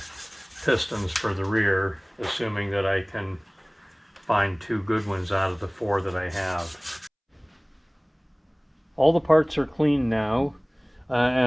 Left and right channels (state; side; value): identical; both; correlation 1.00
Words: pistons for the rear, assuming that I can find 2 good ones out of the 4 that I have. All the parts are clean now,